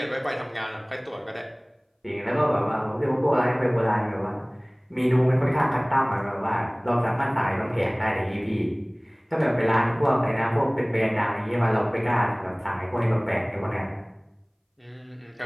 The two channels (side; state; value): both; identical; correlation 1.00